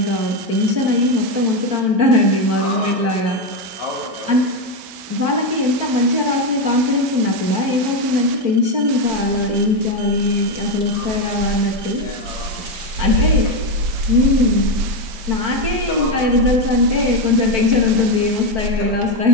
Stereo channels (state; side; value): late; left; 4.5 ms